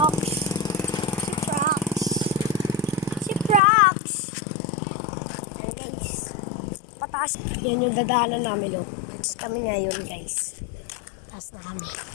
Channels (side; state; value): right; drops out; at 3.6 s